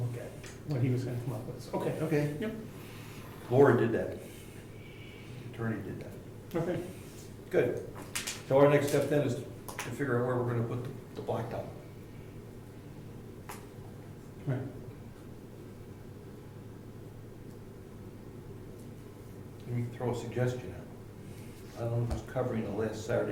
at, what he was going to come up with. Okay, Okay. Yep. Laura did that. The attorney did that. okay. Good. So our next step then is to figure out where we're gonna put the blacktop. Right. Let me throw a suggestion out. I don't know who's covering the last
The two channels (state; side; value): identical; both; correlation 1.00